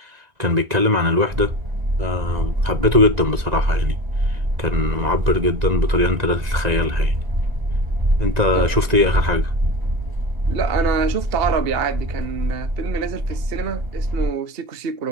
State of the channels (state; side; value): late; left; 1.9 ms